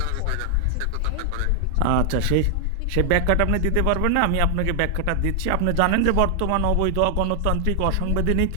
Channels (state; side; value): different; both; correlation 0.00